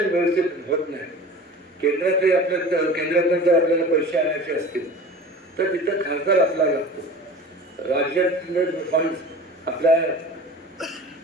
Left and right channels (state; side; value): normal; both; correlation 0.38